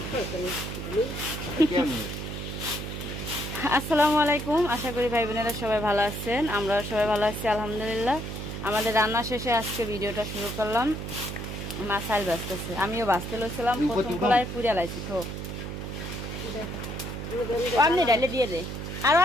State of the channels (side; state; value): right; noise; hum, 6 dB below the sound